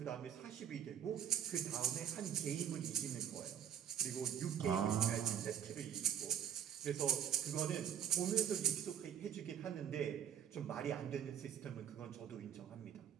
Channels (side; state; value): left; quieter; 9.3 dB